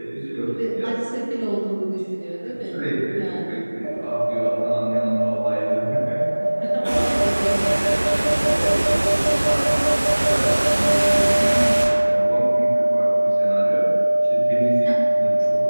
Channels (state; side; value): inverted; both; correlation -1.00